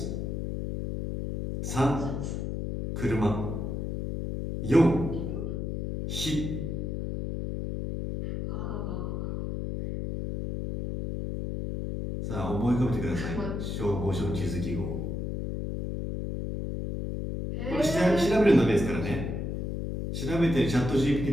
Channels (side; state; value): left; noise; hum, 3 dB below the sound